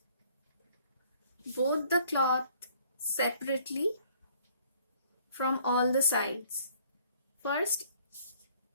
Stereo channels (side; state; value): both; inverted; correlation -0.60